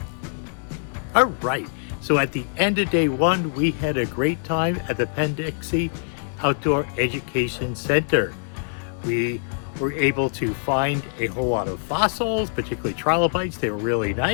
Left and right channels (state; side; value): silent; right; 63 dB below the other